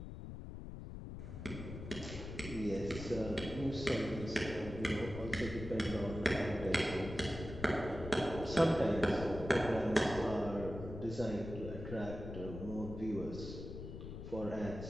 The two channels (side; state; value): left; noise; rumble, 9 dB below the sound